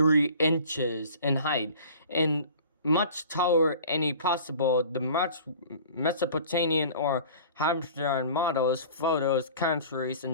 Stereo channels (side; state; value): both; inverted; correlation -0.45